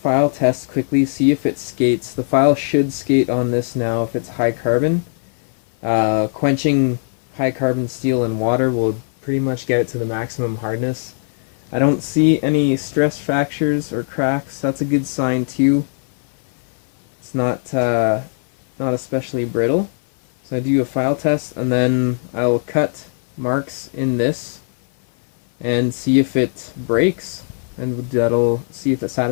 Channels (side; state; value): right; silent; 57 dB below the other